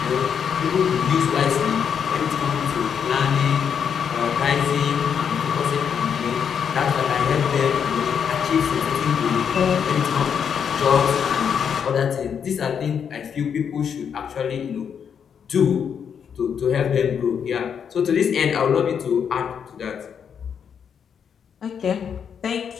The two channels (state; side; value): quieter; right; 7.5 dB